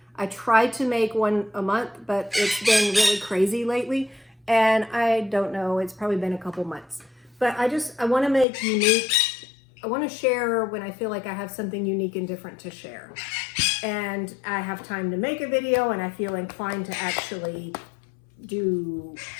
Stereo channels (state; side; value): drops out; right; at 8.5 s